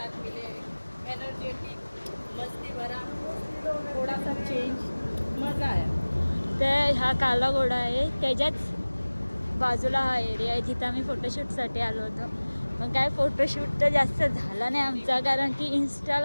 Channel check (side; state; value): both; inverted; correlation -1.00